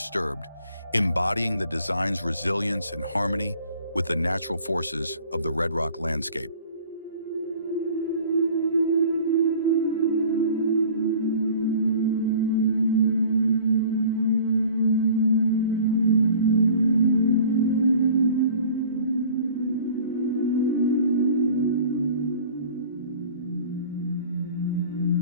embodying the design's resilience and harmony with the natural forces of the Red Rock landscape.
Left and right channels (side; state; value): both; inverted; correlation -0.47